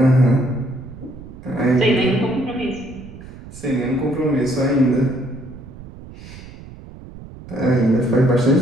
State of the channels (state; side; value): noise; right; rumble, 16 dB below the sound